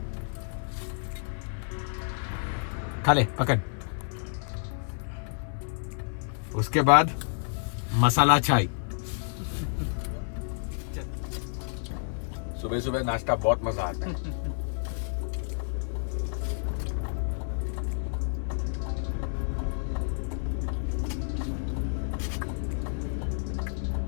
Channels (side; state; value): right; silent; digital silence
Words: खा ले पकड़. उसके बाद मसाला चाय. सुबह सुबह नाश्ता बहुत मजा आता है.